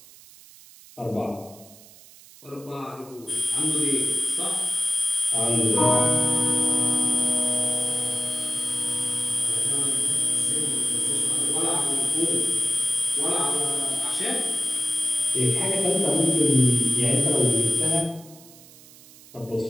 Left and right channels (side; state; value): right; noise; hiss, 22 dB below the sound